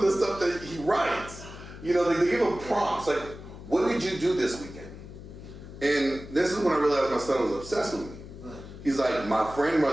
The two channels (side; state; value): left; noise; hum, 14 dB below the sound